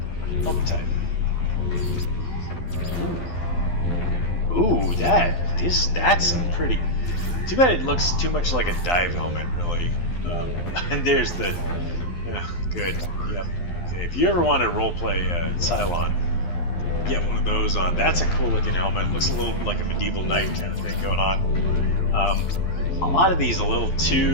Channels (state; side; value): late; right; 12 ms